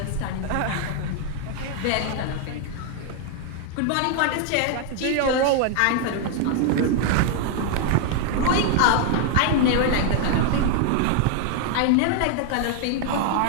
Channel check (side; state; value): both; different; correlation 0.00